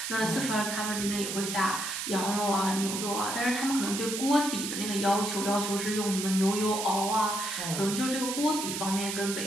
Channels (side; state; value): right; noise; hiss, 4 dB below the sound